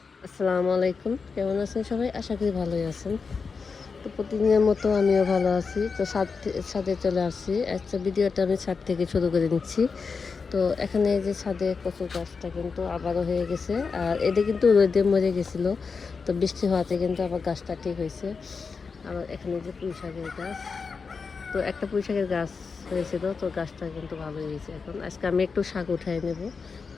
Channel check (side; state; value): right; quieter; 5.1 dB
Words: আসসালামু আলাইকুম, কেমন আছেন সবাই? আশা করি ভালোই আছেন। তো প্রতিদিনের মতো আমিও ভালো আছি। তো ছাদে চলে আসছি। আজকে ভিডিওটা আমি ছাদ থেকে শুরু করে নিচ্ছি। তো এখানে এই যে ছাদে কচুর গাছটা কিন্তু আবারও হয়ে গেছে, আর এটা কিন্তু রোদে মরে গেছিল। তো বৃষ্টি হওয়াতে কিন্তু আবার গাছটা ঠিক হয়েছে। আবার এখানে যে পুঁই শাকের গাছ, তো একটা পুঁই শাকের গাছ হয়েছিল, তো গাছটা কিন্তু ভালো হয়েছে। এখন আজকে আমি একটু শাক উঠাই নেব